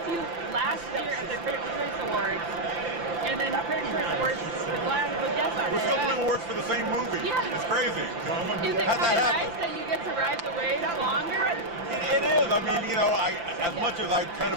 to you last year at the Critics' Choice Awards, and then the Critics' Choice Awards was yesterday. We're still doing awards for the same movie. Yeah. It's crazy. Is it kind of nice that you get to ride the wave longer? It is. I mean, you know, as much as I kind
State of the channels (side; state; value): left; late; 5.9 ms